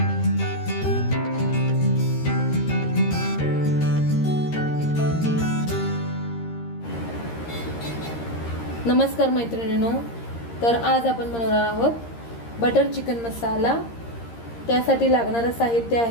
मैत्रिणींनो, तर आज आपण बनवणार आहोत बटर चिकन मसाला। त्यासाठी लागणारे साहित्य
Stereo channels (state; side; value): late; right; 13 ms